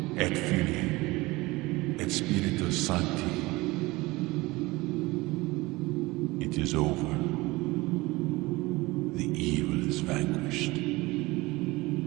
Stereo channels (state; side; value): quieter; left; 21.4 dB